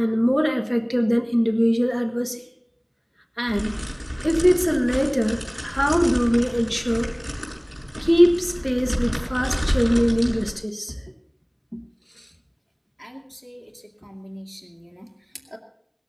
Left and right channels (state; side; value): identical; both; correlation 1.00